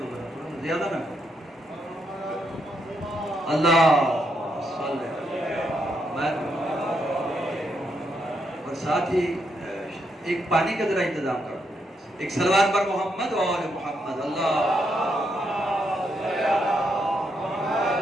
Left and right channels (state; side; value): normal; both; correlation 0.79